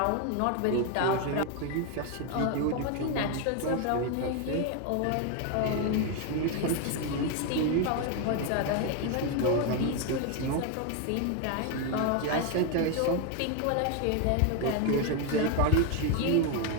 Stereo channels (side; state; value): both; different; correlation 0.01